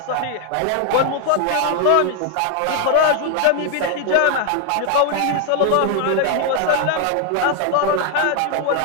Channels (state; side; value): different; both; correlation 0.00